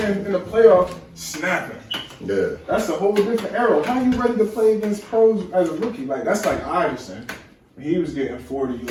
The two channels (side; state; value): both; identical; correlation 1.00